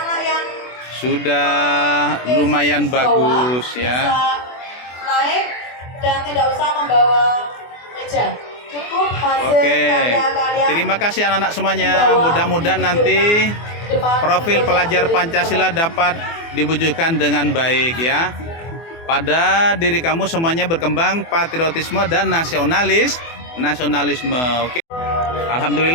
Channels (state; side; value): late; right; 24 ms